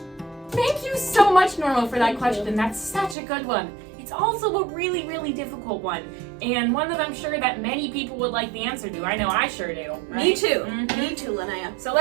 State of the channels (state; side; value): drops out; left; at 3.2 s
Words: Thank you so much, Norma, for that question. That's such a good one. It's also a really, really difficult one, and one that I'm sure that many people would like the answer to. I know I sure do. Right? Me too. Mhm. Me too, Linnea. So